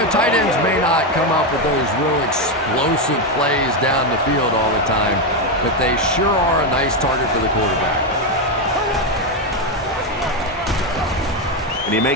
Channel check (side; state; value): both; normal; correlation 0.08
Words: tight ends may not come up with those real explosive plays down the field all the time, but they sure are a nice target for the quarterback. And he